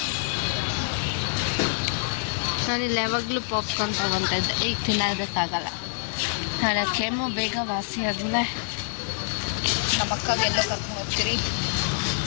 ನಾನಿಲ್ಲಿ ಯಾವಾಗಲೂ ಪಾಪ್ಕಾರ್ನ್ ತೊಗೊತಾ ಇದ್ದೆ. ಈಗ ತಿನ್ನೋದಕ್ಕಾಗಲ್ಲ. ನಾಳೆ ಕೆಮ್ಮು ಬೇಗ ವಾಸಿ ಆದಮೇಲೆ ನಮ್ಮ ಅಕ್ಕಗೆಲ್ಲೋ ಕರ್ಕೊಂಡು ಹೋಗ್ತೀರಿ.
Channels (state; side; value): silent; right; 61 dB below the other